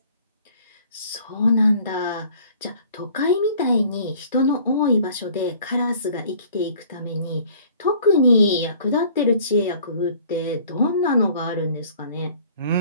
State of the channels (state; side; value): inverted; both; correlation -0.53